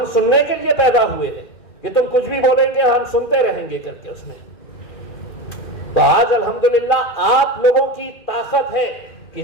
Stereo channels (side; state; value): right; late; 2.4 ms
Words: सुनने के लिए पैदा हुए हैं कि तुम कुछ भी बोलेंगे हम सुनते रहेंगे करके उसमें। तो आज अल्हम्दुलिल्लाह आप लोगों की ताकत है कि